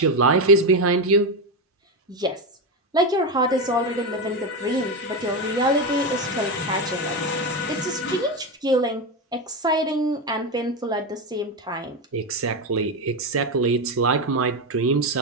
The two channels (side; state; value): both; normal; correlation 0.12